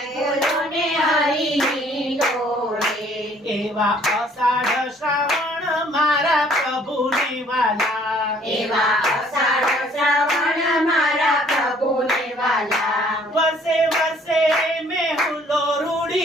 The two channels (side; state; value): both; normal; correlation 0.59